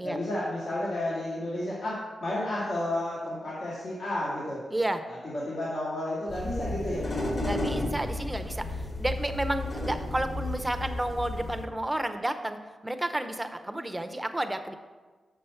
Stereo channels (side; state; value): both; normal; correlation 0.90